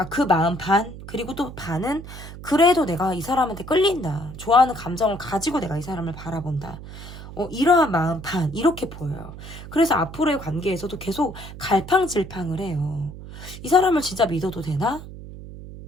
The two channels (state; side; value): noise; right; hum, 13 dB below the sound